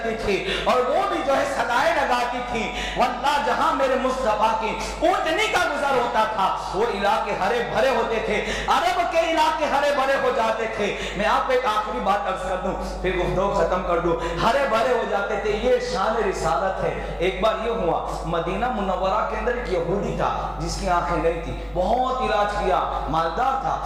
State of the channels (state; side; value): identical; both; correlation 1.00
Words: تھی اور وہ بھی جو ہے صدائیں لگاتی تھی، واللہ جہاں میرے مصطفیٰ کی اونٹنی کا گزر ہوتا تھا وہ علاقے ہرے بھرے ہوتے تھے، عرب کے علاقے ہرے بھرے ہو جاتے تھے۔ میں آپ کو ایک آخری بات عرض کر دوں پھر گفتگو ختم کر دوں، ہرے بھرے ہو جاتے تھے، یہ شان رسالت ہے۔ ایک بار یہ ہوا مدینہ منورہ کے اندر ایک یہودی تھا جس کی آنکھیں نہیں تھی، بہت علاج کیا، مالدار تھا،